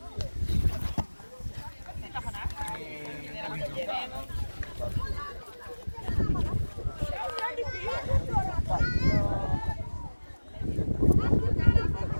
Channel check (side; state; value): both; inverted; correlation -1.00